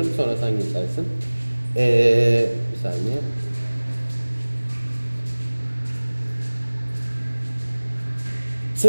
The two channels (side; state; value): both; inverted; correlation -1.00